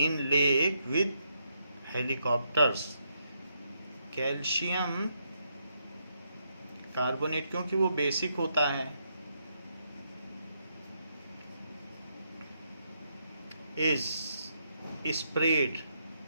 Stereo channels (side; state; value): both; inverted; correlation -0.78